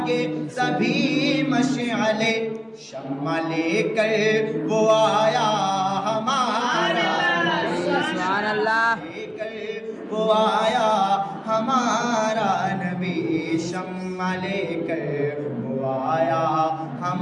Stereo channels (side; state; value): both; identical; correlation 1.00